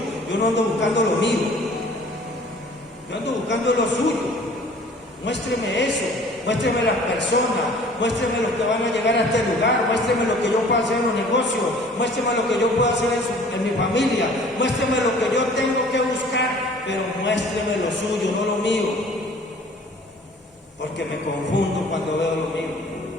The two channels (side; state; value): both; normal; correlation 0.50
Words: yo no ando buscando lo mío, yo ando buscando lo suyo. Muéstreme eso, muéstreme las personas, muéstreme los que van a llegar a este lugar, muéstreme lo que yo puedo hacer en los negocios, muéstreme lo que yo puedo hacer en mi familia, muéstreme lo que yo tengo que buscar, pero muéstreme lo suyo, no lo mío. Porque me confundo cuando veo lo mío.